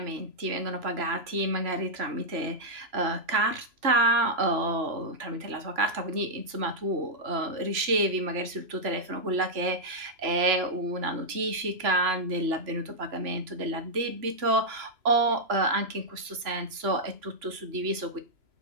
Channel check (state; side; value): late; left; 3.0 ms